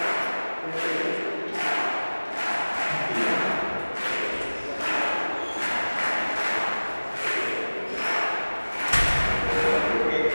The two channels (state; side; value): inverted; both; correlation -1.00